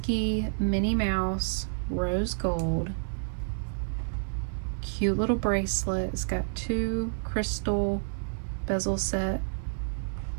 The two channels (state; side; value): silent; left; 58 dB below the other